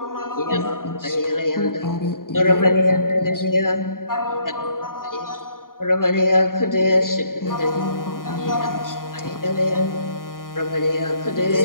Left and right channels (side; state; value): right; late; 0.91 ms